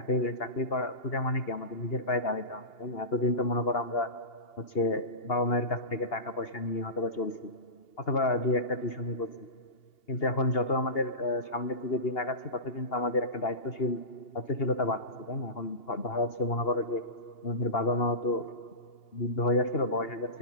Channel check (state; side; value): late; right; 2.8 ms